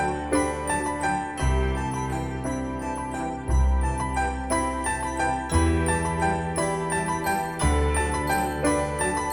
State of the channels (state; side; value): identical; both; correlation 1.00